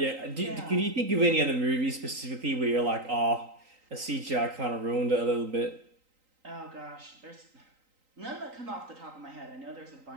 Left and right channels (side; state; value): left; late; 3.9 ms